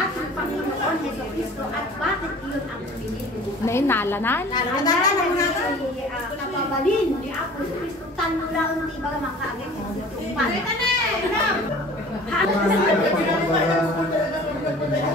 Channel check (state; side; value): normal; both; correlation 0.45